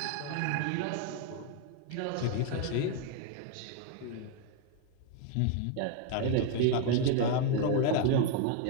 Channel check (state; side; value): different; both; correlation 0.01